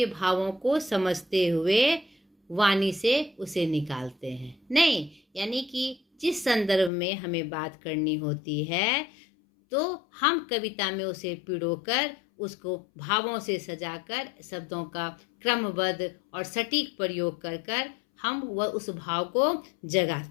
भावों को समझते हुए वाणी से उसे निकालते हैं। नहीं, यानी कि जिस संदर्भ में हमें बात करनी होती है, तो हम कविता में उसे पिरोकर, उसको भावों से सजाकर, शब्दों का क्रमबद्ध और सटीक प्रयोग कर हम वह उस भाव को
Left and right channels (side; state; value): right; drops out; at 6.9 s